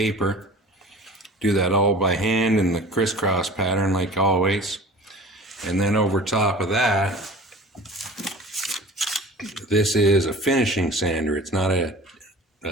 Do that all by hand in the crisscross pattern like always. And then over top of that, this is a finishing sander. It's not a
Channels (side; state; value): both; normal; correlation 0.41